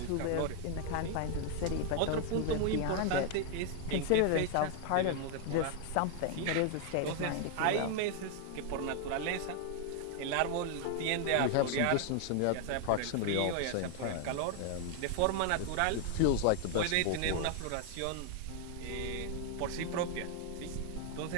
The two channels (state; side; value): different; both; correlation 0.00